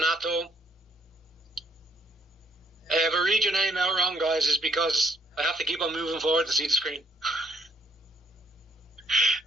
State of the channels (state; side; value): normal; both; correlation 0.68